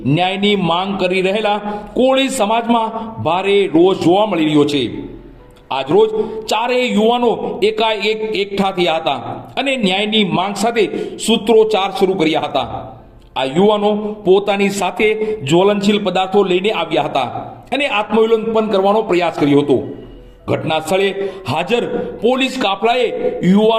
ન્યાયની માંગ કરી રહેલા કોળી સમાજમાં ભારે રોષ જોવા મળી રહ્યો છે। આજરોજ 4 યુવાનો એકાએક એકઠા થયા હતા અને ન્યાયની માંગ સાથે સૂત્રોચ્ચાર શરૂ કર્યા હતા। આ યુવાનો પોતાની સાથે જ્વલનશીલ પદાર્થો લઈને આવ્યા હતા અને આત્મવિલોપન કરવાનો પ્રયાસ કર્યો હતો। ઘટના સ્થળે હાજર પોલીસ કાફલાએ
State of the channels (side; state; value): both; identical; correlation 1.00